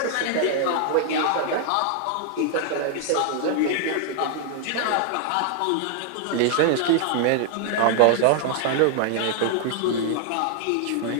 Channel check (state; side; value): different; both; correlation -0.01